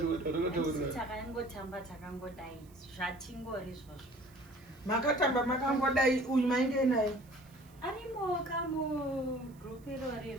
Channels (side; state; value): right; noise; hiss, 28 dB below the sound